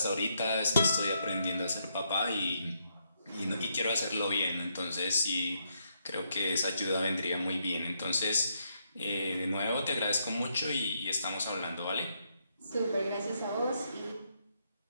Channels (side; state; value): both; inverted; correlation -0.77